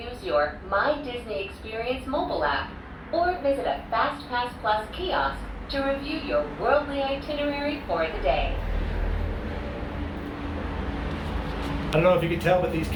your My Disney Experience mobile app or visit a FastPass Plus kiosk to review your worldly itinerary for the day. I don't know if you can tell, but these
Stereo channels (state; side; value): identical; both; correlation 1.00